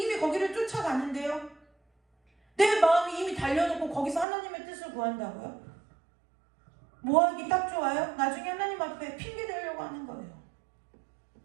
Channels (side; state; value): left; drops out; at 4.2 s